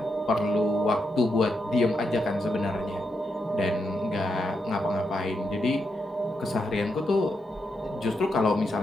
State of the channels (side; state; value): both; normal; correlation 0.83